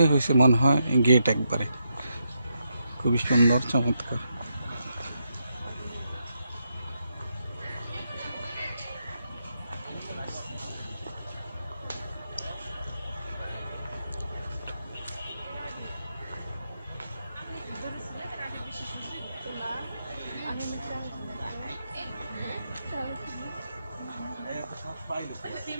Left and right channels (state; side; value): inverted; both; correlation -0.82